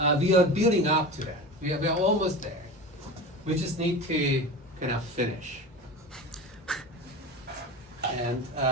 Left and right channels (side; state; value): both; normal; correlation 0.30